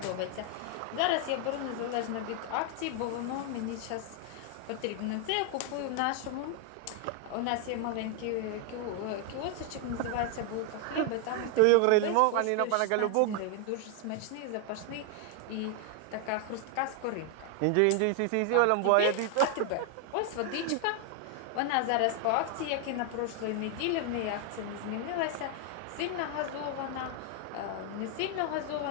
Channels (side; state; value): both; different; correlation 0.01